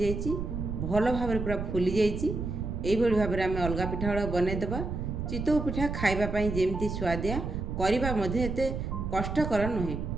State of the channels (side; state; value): right; noise; rumble, 4 dB below the sound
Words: भल भाव पूरा फुली जाइए। यही भाव में आम अलग पिठा गुड़ा बनईदेवा। चितौ पिठा खाइबा जेमती स्वादिया करबा मध्ये एते कष्टकर नुहे।